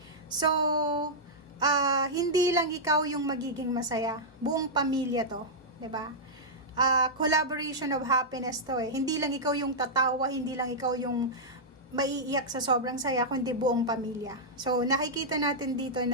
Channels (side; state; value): both; normal; correlation -0.09